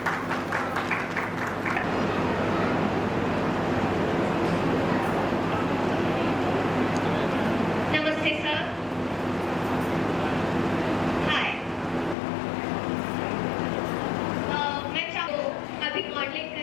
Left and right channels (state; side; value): drops out; right; at 12.2 s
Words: नमस्ते सर। हाय। मैं अभी मॉडलिंग